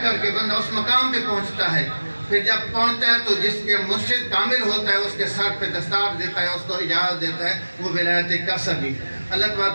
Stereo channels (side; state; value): both; inverted; correlation -1.00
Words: کر کے بندہ اس مقام پہ پہنچتا ہے. پھر جب پہنچتا ہے تو جس کے مرشد کامل ہوتا ہے اس کے سر پہ دستار دیتا ہے, اس کو اجازت دیتا ہے, وہ ولایت قصبی. اللہ